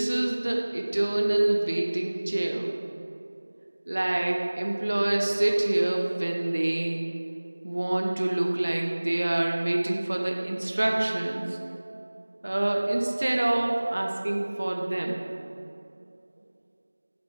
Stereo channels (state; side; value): inverted; both; correlation -1.00